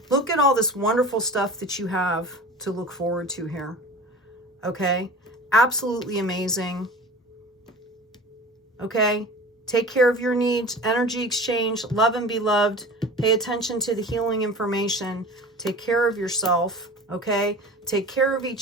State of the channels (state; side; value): normal; both; correlation 0.37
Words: Look at all this wonderful stuff that you have to look forward to here. Okay? Absolutely amazing. Okay? Take care of your needs. Energy exchange. Love and be loved. Pay attention to the healing information. Take care of yourself. Okay? Take care of